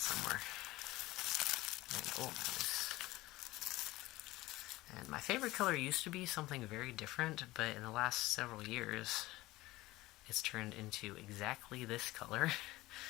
And, oh, nice. And my favorite color used to be something very different, but in the last several years, it's turned into exactly this color.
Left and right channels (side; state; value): right; quieter; 18.7 dB